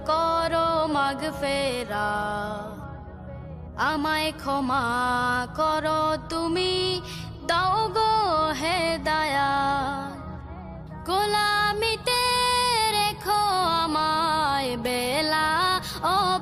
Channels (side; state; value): both; identical; correlation 1.00